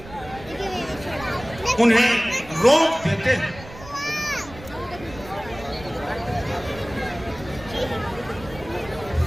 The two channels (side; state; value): right; noise; rumble, 17 dB below the sound